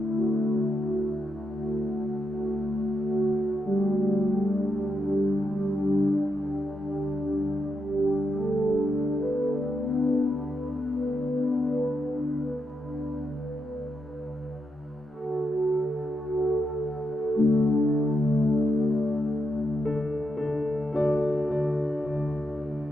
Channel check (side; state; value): both; normal; correlation 0.83